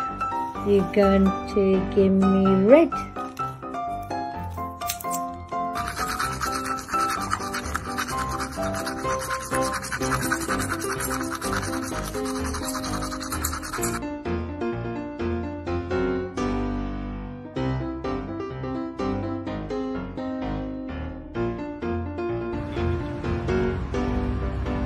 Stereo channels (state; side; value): identical; both; correlation 1.00